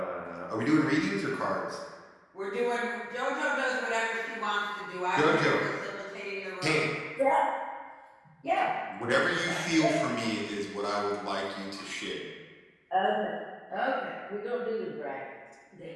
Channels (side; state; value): both; identical; correlation 1.00